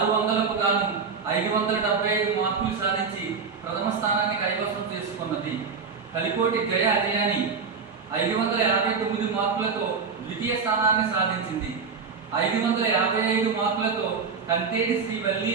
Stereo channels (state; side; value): quieter; left; 5.4 dB